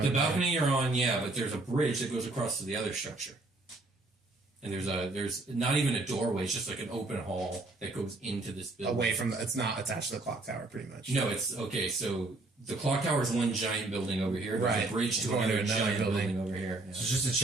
The balcony you're on, yeah, but there's a bridge that goes across to the other structure. And there's not even a doorway, it's just like an open hall that goes into this building. away from it's not attached to the clock tower, pretty much. No, it's okay, so the clock tower is one giant building over here. There's Right. a bridge to Going another to another giant building. building over here. Yeah. So just to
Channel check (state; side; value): quieter; left; 3.0 dB